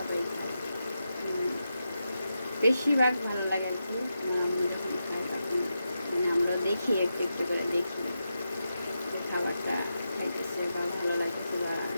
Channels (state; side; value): inverted; both; correlation -0.88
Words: খায়। বেশিরভাগ ভালো লাগে আর কি। আমার আম্মু যখন খায় তখন মানে আমরা দেখি, একটু একটু করে দেখি যে খাবারটা খাইতেছে বা ভালো লাগতেছে, বা